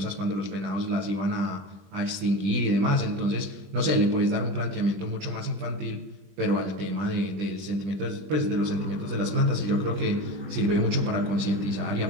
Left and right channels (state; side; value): late; left; 20 ms